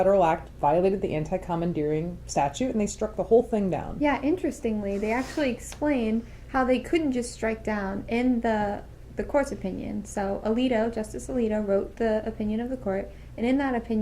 act violated the anti-commandeering statute, and they struck the whole thing down. Yeah, interestingly, they actually explained how they couldn't just strike down in the court's opinion. So Justice Alito wrote the opinion of the court, and in that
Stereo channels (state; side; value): identical; both; correlation 1.00